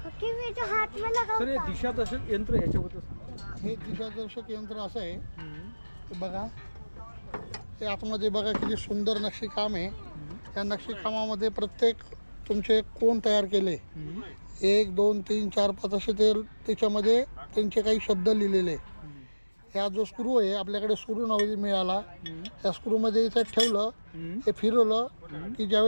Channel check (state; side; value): inverted; both; correlation -1.00